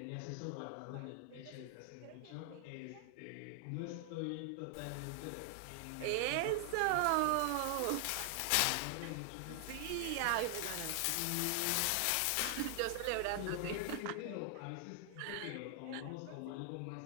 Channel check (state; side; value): different; both; correlation 0.00